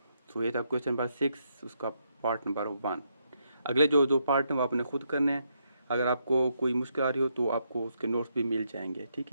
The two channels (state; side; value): inverted; both; correlation -0.78